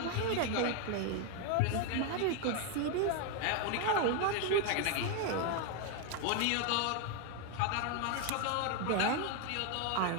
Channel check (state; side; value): different; both; correlation 0.01